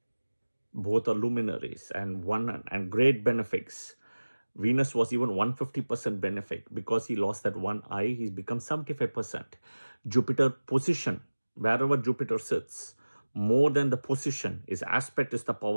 Both are luminaries and great benefics. Venus was even 150% benefic. Because he lost that one eye, he's become 75%. Jupiter position, wherever Jupiter sits, more than the position, his aspect is the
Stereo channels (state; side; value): inverted; both; correlation -1.00